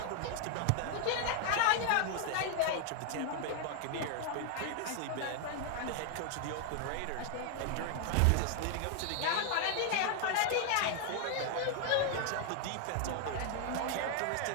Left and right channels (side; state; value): both; different; correlation 0.00